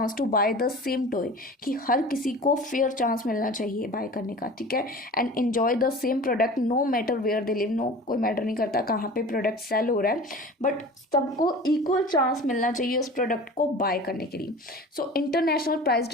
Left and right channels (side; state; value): both; normal; correlation 0.39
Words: to buy the same toy, कि हर किसी को फेयर चांस मिलना चाहिए बाय करने का, ठीक है, and enjoy the same product no matter where they live, no कोई मैटर नहीं करता कहाँ पे प्रोडक्ट सेल हो रहा है, बट सबको इक्वल चांस मिलना चाहिए उस प्रोडक्ट को बाय करने के लिए। सो इंटरनेशनल प्राइस